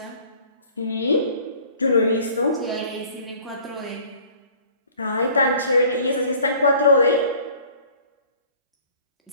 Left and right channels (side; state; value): both; inverted; correlation -0.51